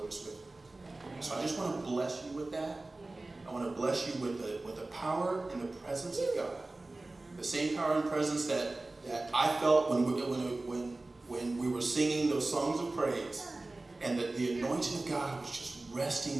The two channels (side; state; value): left; quieter; 3.0 dB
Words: is with you. So I just want to bless you with that. I want to bless you with the power and the presence of God. The same power and presence that I felt when we were singing those songs of praise, and that the anointing of God was just